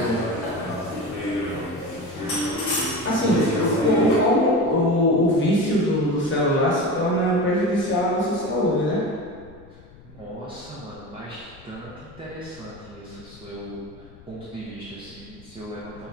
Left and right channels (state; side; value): noise; left; rumble, 22 dB below the sound